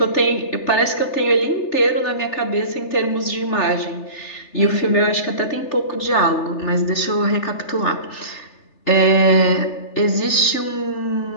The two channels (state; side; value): late; right; 3.3 ms